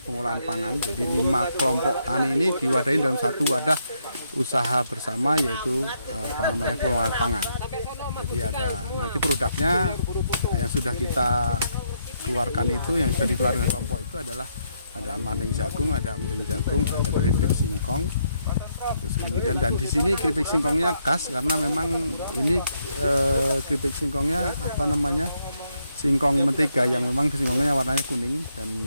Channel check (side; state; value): both; inverted; correlation -0.77